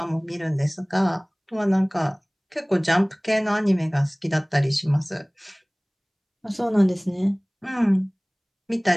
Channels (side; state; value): both; identical; correlation 1.00